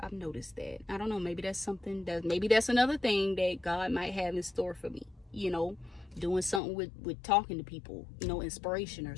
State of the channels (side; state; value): right; drops out; at 6.6 s